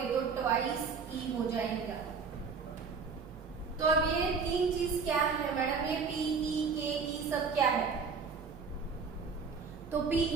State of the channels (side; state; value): left; quieter; 5.4 dB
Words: तो ट्वाइस E हो जाएगा। तो अब ये 3 चीज क्या है मैडम, ये PE KE सब क्या है? तो